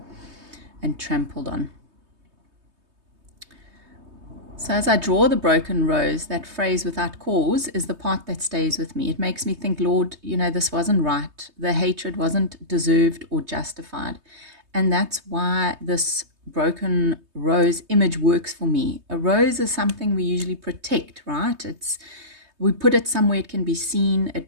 and trampled on. So as I draw the broken rose, that phrase "without cause" is the part that stays with me. It makes me think, Lord, this wasn't right. The hatred wasn't deserved or justified. And that's why this broken rose image works for me. A rose is something we usually protect, right? We put it somewhere it can be seen.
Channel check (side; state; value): left; late; 3.2 ms